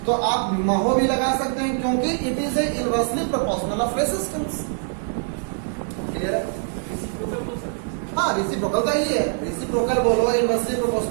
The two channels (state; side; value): silent; left; 63 dB below the other